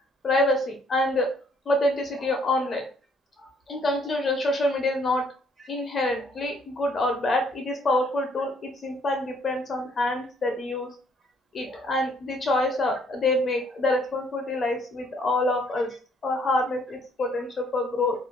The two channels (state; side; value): normal; both; correlation 0.65